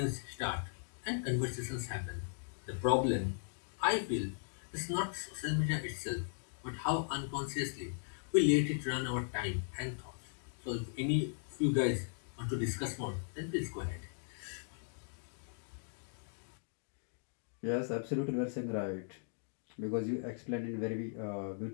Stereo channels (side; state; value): right; silent; digital silence